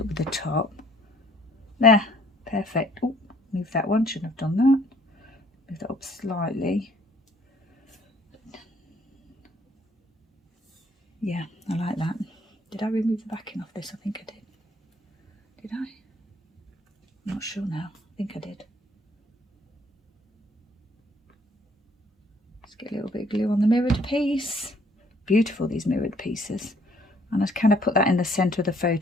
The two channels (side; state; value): both; normal; correlation 0.60